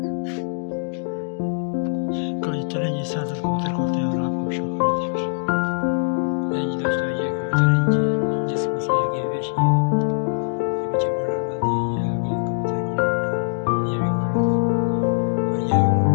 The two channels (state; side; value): silent; right; digital silence